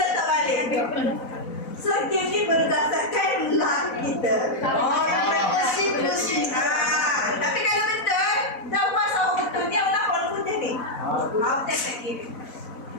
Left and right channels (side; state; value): right; late; 4.0 ms